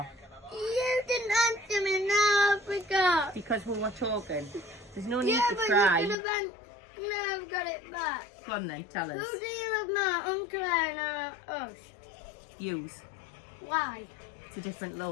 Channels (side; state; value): right; drops out; at 6.2 s